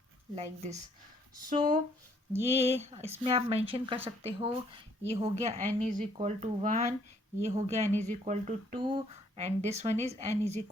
लाइक दिस। सो ये इसमें आप मेंशन कर सकते हो, ये हो गया n इज इक्वल टू 1, ये हो गया n is equal to 2, and this one is n is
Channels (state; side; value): normal; both; correlation 0.65